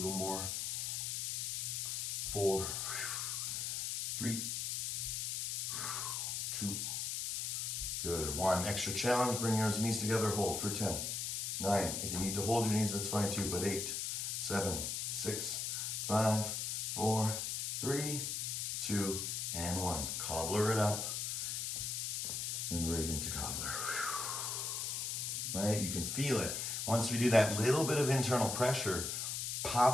more. 4, 3, 2. Good. 1. Extra challenge. Bring your knees together. Hold for 10. 9. If you need to hold your knees, that's fine too. But 8, 7, 6, 5, 4, 3, 2, and 1. Cobbler it up and right into cobbler. Right? You can feel it. Once we do that little bit of internal pressure,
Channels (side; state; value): left; noise; hiss, 1 dB below the sound